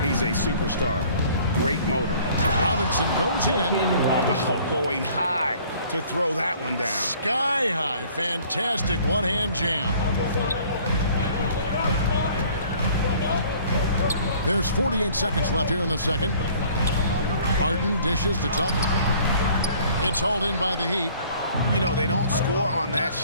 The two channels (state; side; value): inverted; both; correlation -0.54